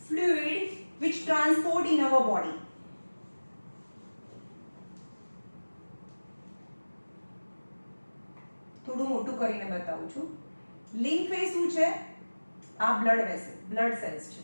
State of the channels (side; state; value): both; inverted; correlation -1.00